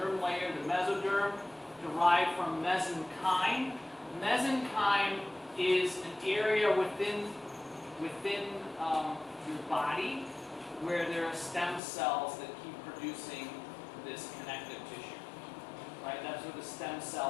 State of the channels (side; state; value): right; drops out; at 11.8 s